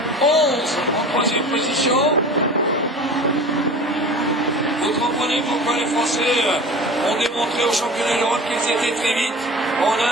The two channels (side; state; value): both; normal; correlation 0.37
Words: 2011 en 3e position. Vous comprenez pourquoi les Français ont démontré au championnat d'Europe qu'ils étaient très vite. On